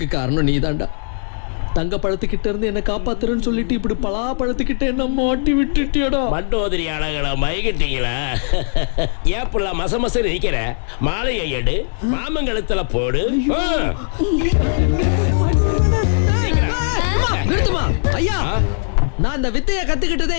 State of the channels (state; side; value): silent; right; digital silence